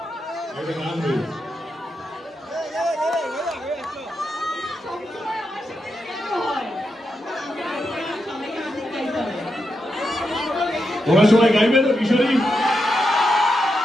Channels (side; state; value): both; normal; correlation 0.85